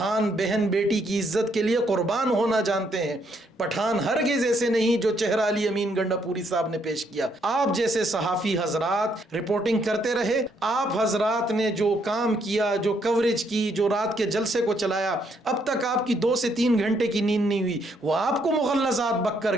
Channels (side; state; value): both; normal; correlation 0.72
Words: بہن بیٹی کی عزت کے لیے قربان ہونا جانتے ہیں، پٹھان ہرگز ایسے نہیں جو چہرہ علی امین گنڈا پوری صاحب نے پیش کیا۔ آپ جیسے صحافی حضرات رپورٹنگ کرتے رہے، آپ حضرات نے جو کام کیا، جو کوریج کی، جو رات کے جلسے کو چلایا، اب تک آپ کی 2 سے 3 گھنٹے کی نیند نہیں ہوئی، وہ آپ کو مغلظات بک